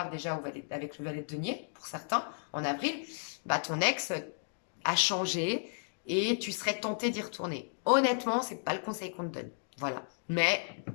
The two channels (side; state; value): right; silent; digital silence